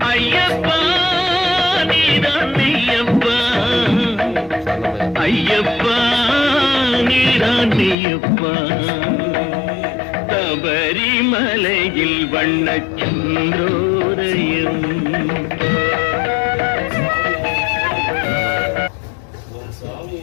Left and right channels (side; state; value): right; drops out; at 8.0 s